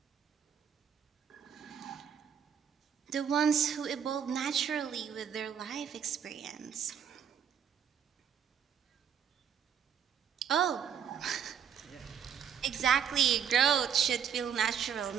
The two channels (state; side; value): quieter; left; 8.2 dB